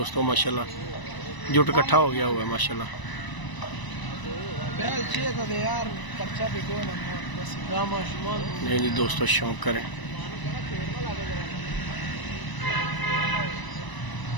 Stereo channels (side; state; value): right; late; 1.0 ms